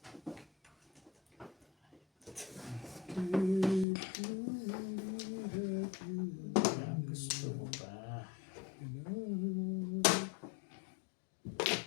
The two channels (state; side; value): drops out; right; at 3.9 s